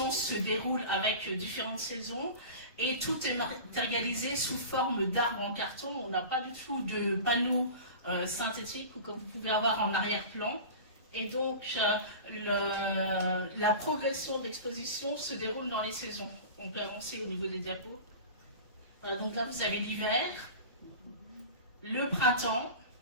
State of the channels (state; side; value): inverted; both; correlation -0.34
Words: se déroule avec différentes saisons et tout est matérialisé sous forme d'arbres en carton. On n'a pas du tout de panneaux synthétiques ou comme vous pouvez avoir en arrière-plan. Et donc la progression de l'exposition se déroule dans les saisons. On peut avancer au niveau des diapos. Donc là vous avez l'hiver, le printemps,